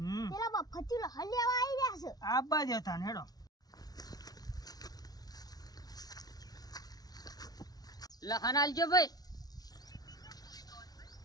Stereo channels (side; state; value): right; late; 0.19 ms